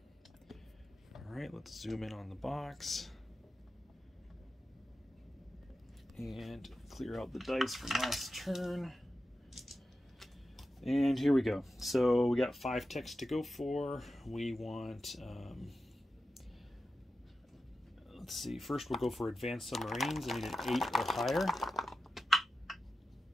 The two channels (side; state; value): both; normal; correlation 0.91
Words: All right, let's zoom in on the box and clear out the dice from last turn. And here we go. So we got 5 techs to go for. We want, let's see, first we'll go for advanced submarines. I need an 8 or higher.